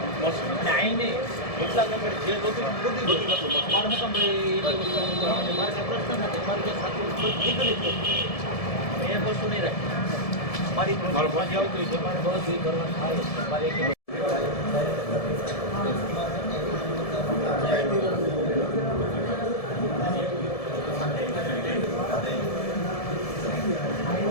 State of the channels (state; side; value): late; right; 1.7 ms